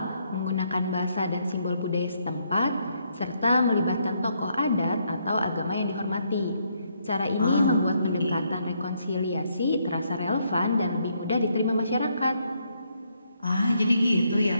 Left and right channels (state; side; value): inverted; both; correlation -0.74